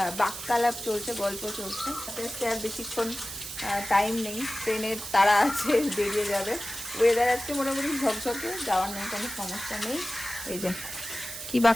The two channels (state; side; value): noise; right; hiss, 9 dB below the sound